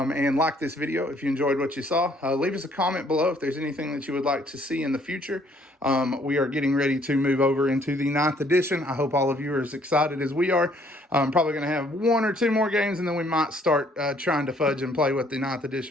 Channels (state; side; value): normal; both; correlation 0.64